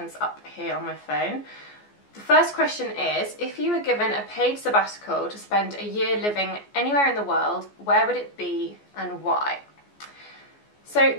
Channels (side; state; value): right; late; 14 ms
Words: up here on my phone. The first question is, if you were given a paid sabbatical to spend a year living anywhere in the world, where would it be and why? So